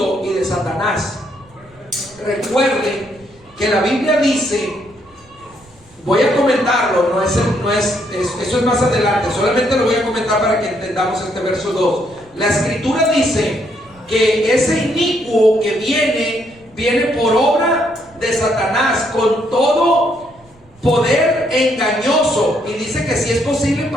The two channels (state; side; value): noise; right; rumble, 28 dB below the sound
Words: y de Satanás. Recuerden que la Biblia dice, voy a comentarlo, eso es más adelante, solamente lo voy a comentar para que entendamos este verso 2. La Escritura dice que ese inicuo que viene por obra de Satanás con todo poder engañoso, y dice que si es posible